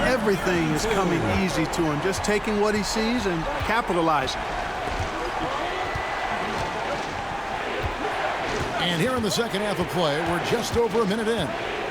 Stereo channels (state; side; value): identical; both; correlation 1.00